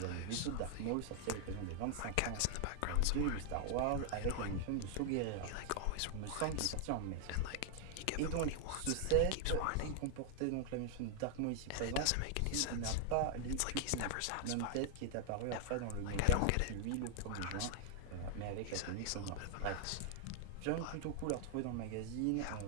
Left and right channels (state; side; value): different; both; correlation 0.00